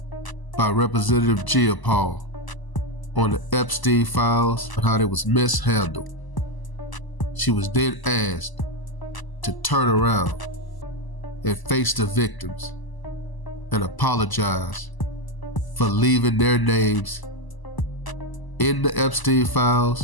by Representative Paul on the Epstein files and how they was mishandled. She was then asked to turn around and face the victims and apologize for leaving their names in the Epstein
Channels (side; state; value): right; late; 1.0 ms